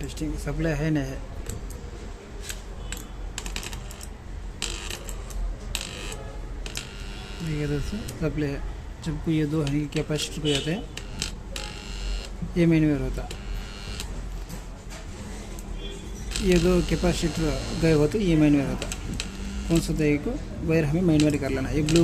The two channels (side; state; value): both; identical; correlation 1.00